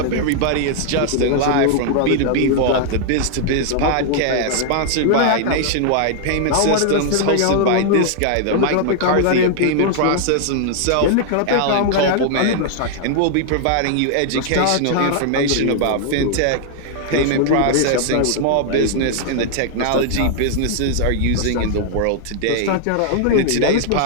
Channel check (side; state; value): both; different; correlation 0.00